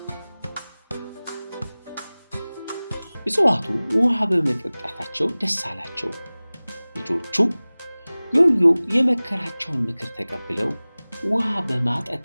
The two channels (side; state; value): both; inverted; correlation -0.99